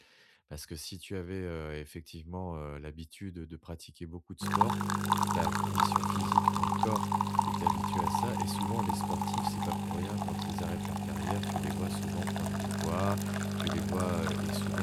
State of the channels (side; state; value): both; identical; correlation 1.00